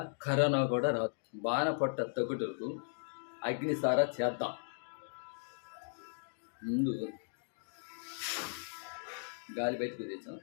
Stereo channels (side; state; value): right; silent; digital silence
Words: కరోనా కూడా రాదు. బాణపట్ట తగ్గుటకు అగ్నిసార చేద్దాం. ముందు గాలి బయటకు తెచ్చాం,